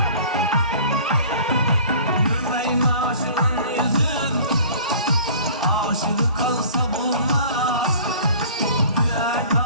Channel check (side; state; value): both; inverted; correlation -0.46